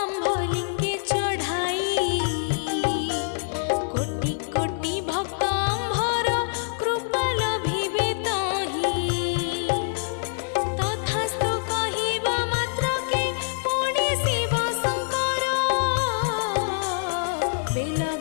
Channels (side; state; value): right; silent; digital silence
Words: आम्भलिंगे चढ़ाई कोटि कोटि भक्त आम्भर कृपा लभिबे तहि तथास्तु कहिबा मात्रके पुଣି शिव शंकर बेल